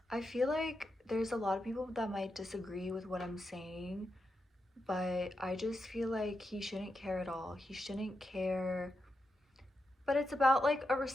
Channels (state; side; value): normal; both; correlation 0.86